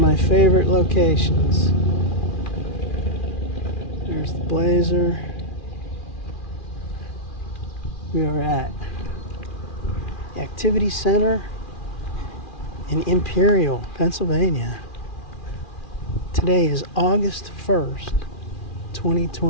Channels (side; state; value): right; late; 2.4 ms